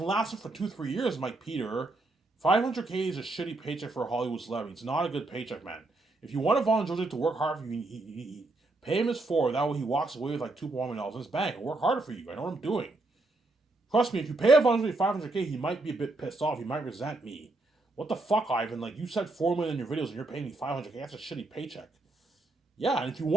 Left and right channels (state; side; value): quieter; left; 3.0 dB